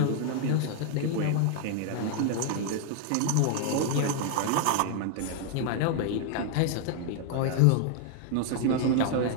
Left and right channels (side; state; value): both; different; correlation 0.00